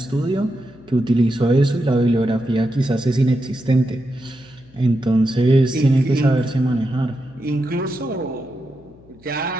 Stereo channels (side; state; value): left; noise; hum, 26 dB below the sound